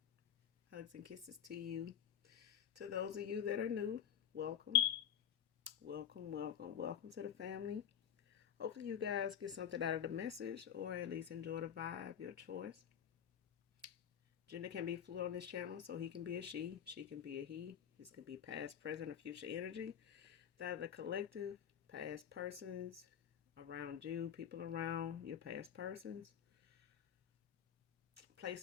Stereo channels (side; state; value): right; quieter; 9.1 dB